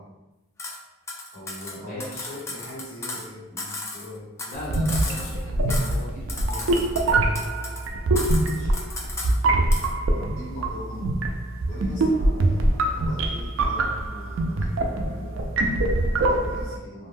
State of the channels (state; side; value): normal; both; correlation 0.58